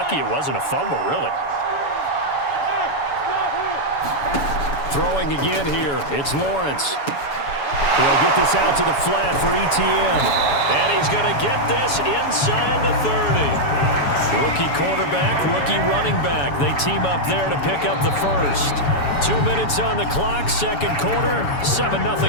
it wasn't a fumble, really. Throwing again here, it's Lawrence. He'll get this out to the flat for ETN. And he's going to get this inside the 30. Rookie quarterback, rookie running back. They team up there to pick up the first. 2 minutes on the clock, 2nd quarter,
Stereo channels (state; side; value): late; right; 7.0 ms